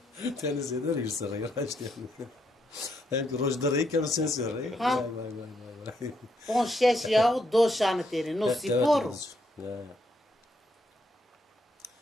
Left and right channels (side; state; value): both; normal; correlation 0.76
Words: teni zeder hirsi rey raşt yani. Hem rojda rey kemer sensi rey. Vay. On şeş yahu doşanı teri no spor. Ya.